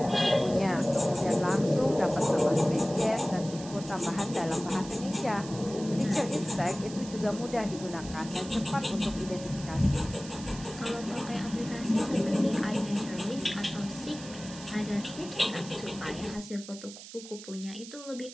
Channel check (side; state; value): right; noise; hiss, 15 dB below the sound